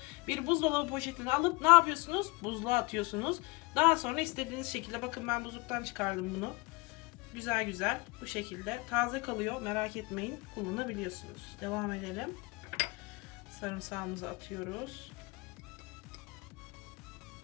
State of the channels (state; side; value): quieter; right; 24.8 dB